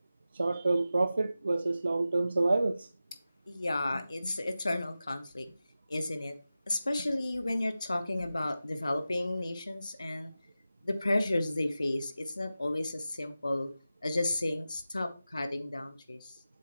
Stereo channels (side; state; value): both; inverted; correlation -0.94